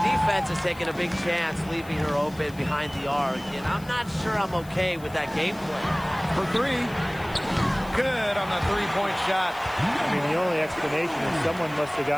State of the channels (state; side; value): noise; left; hiss, 22 dB below the sound